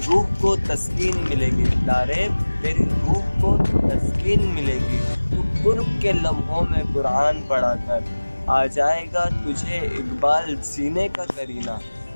روح کو تسکین ملے گی، لارے تیری روح کو تسکین ملے گی، تو قرب کے لمحوں میں قرآن پڑھا کر۔ آ جائے گا تجھے اقبال سینے کا کرینہ،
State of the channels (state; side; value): inverted; both; correlation -1.00